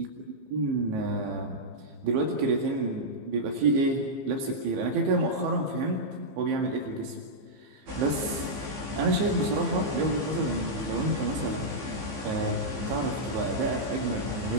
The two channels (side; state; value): left; late; 15 ms